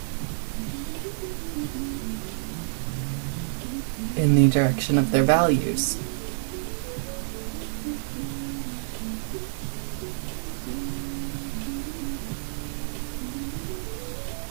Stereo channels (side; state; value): left; silent; 57 dB below the other